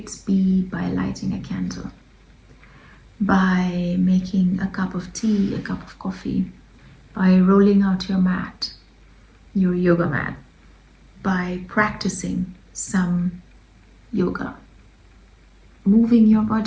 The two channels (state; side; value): identical; both; correlation 1.00